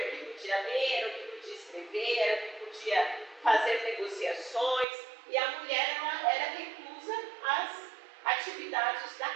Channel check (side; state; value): left; drops out; at 4.9 s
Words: o que podia ler, era o que podia escrever, era o que podia fazer negociações, e a mulher era reclusa às atividades da